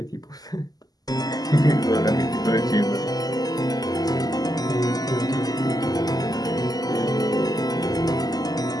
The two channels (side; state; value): right; late; 0.18 ms